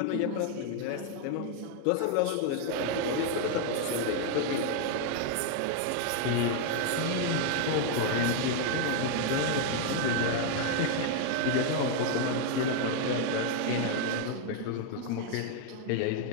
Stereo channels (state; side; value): different; both; correlation 0.00